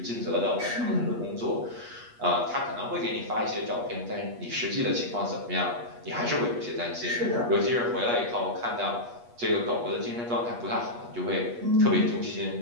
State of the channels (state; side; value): late; left; 8.3 ms